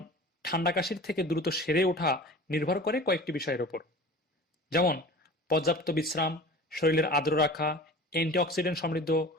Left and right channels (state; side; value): normal; both; correlation 0.40